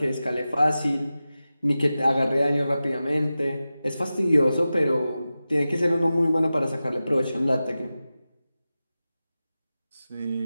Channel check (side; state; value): both; inverted; correlation -0.94